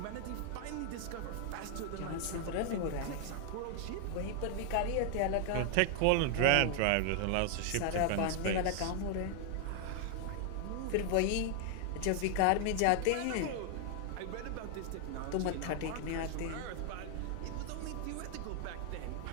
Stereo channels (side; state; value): both; different; correlation 0.00